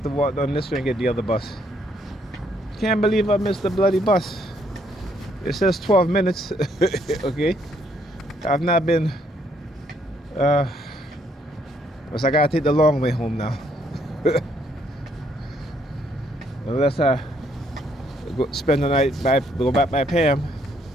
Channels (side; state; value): both; normal; correlation 0.70